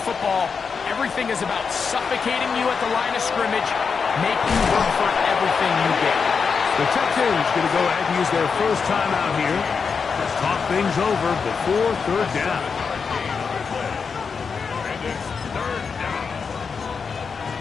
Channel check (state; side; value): quieter; right; 5.6 dB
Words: football. Everything is about suffocating you at the line of scrimmage, making you work for everything you get. The Texans going to go ahead and use their first time out here to talk things over before 3rd down.